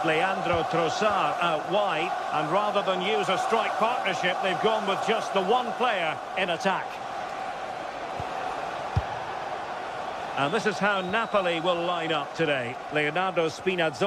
Leandro Trossard out wide. And rather than use a strike partnership, they've gone with just the one player in attack. And this is how Napoli will line up today. Leonardo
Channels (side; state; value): both; identical; correlation 1.00